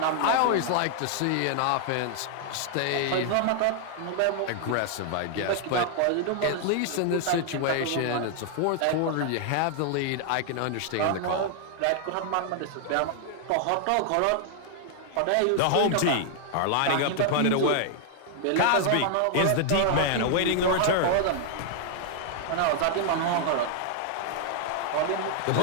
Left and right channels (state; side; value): different; both; correlation 0.00